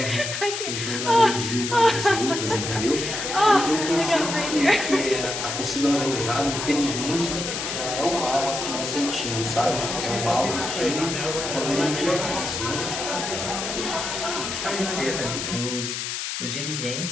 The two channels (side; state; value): left; noise; hiss, 4 dB below the sound